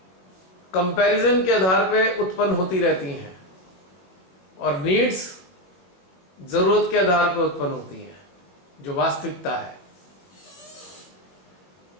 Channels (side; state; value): right; late; 22 ms